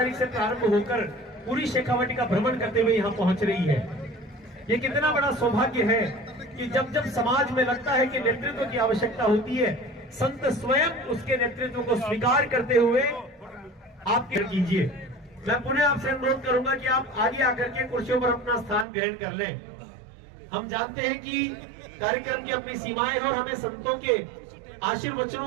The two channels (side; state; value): left; drops out; at 18.9 s